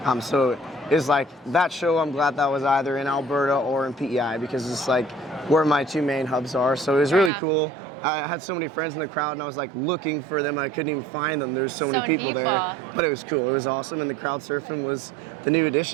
So it's that show. I'm glad that was either in Alberta or in PEI because it's where my two main hubs are. So it was really cool. I had so many friends in the crowd, and I was looking for them. I couldn't even find them. There's so many people there, but it was cool. It was awesome, and the crowd surfing was the new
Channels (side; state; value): left; drops out; at 7.3 s